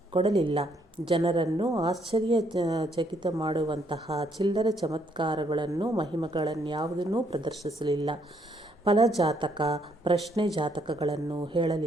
ಕೊಡಲಿಲ್ಲ. ಜನರನ್ನು ಆಶ್ಚರ್ಯಚಕಿತ ಮಾಡುವಂತಹ ಚಿಲ್ಲರೆ ಚಮತ್ಕಾರಗಳನ್ನು ಮಹಿಮೆಗಳನ್ಯಾವುದನ್ನೂ ಪ್ರದರ್ಶಿಸಲಿಲ್ಲ. ಫಲಜಾತಕ ಪ್ರಶ್ನೆ ಜಾತಕಗಳನ್ನು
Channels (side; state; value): both; normal; correlation 0.71